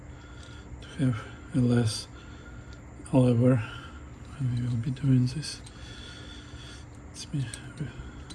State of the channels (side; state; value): both; identical; correlation 1.00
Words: to have a less lever when we will be doing this. Let me